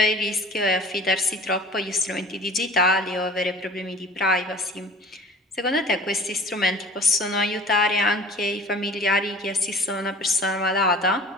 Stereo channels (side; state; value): both; normal; correlation 0.44